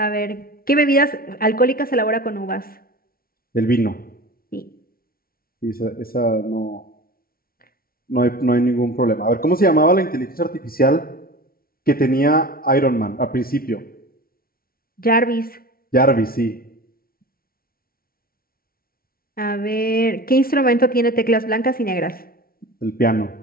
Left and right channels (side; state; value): right; late; 0.43 ms